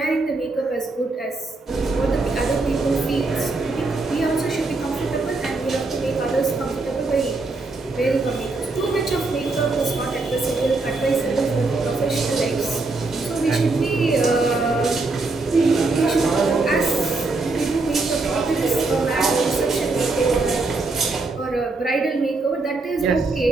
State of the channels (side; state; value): left; quieter; 3.5 dB